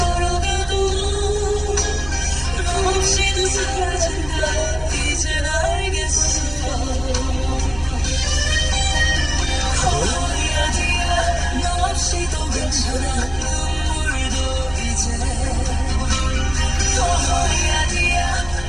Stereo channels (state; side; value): noise; right; hum, 16 dB below the sound